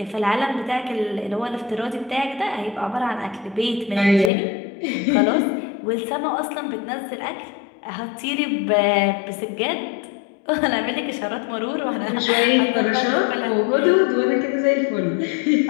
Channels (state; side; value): drops out; right; at 4.3 s